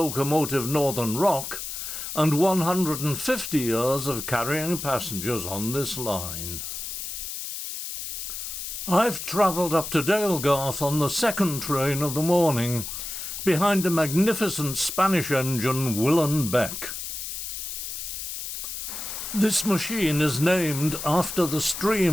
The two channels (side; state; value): left; noise; hiss, 6 dB below the sound